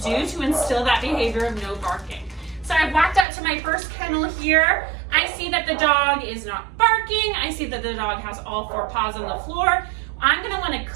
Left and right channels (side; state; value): left; drops out; at 3.2 s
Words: to instill that behavior of no barking. So I've walked out to my first kennel here. I see that the dog is not barking. I see that the dog has all four paws on the floor. I'm going to want to